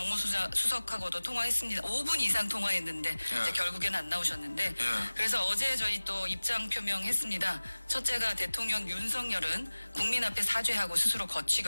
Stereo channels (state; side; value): inverted; both; correlation -1.00